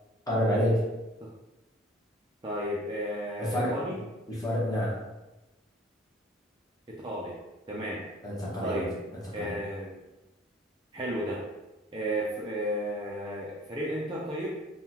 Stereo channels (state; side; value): normal; both; correlation 0.52